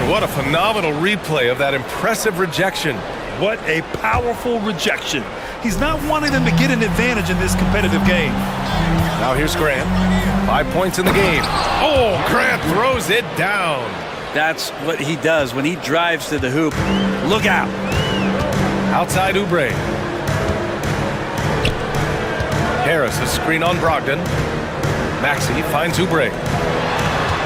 what a phenomenal replay of that impressive rejection. What a powerful rejection. He's not wanting them to get an advantage in this competitive game. Now here's Grant. 5 points in the game. Oh, Grant throws it down. That's what he does when he drives to the hoop. Look out. Outside Oubre. Harris a screen on Brogdon. Maxey finds Oubre.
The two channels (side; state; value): both; identical; correlation 1.00